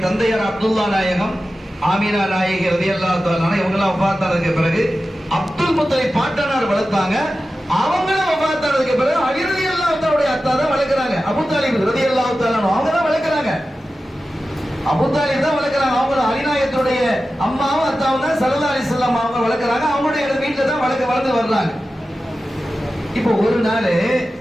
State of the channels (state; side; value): normal; both; correlation 0.94